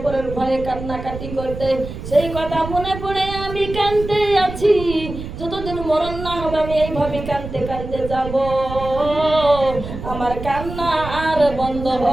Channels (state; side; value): noise; right; rumble, 9 dB below the sound